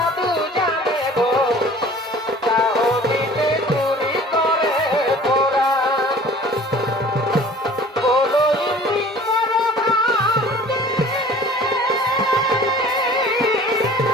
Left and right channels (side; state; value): both; normal; correlation 0.47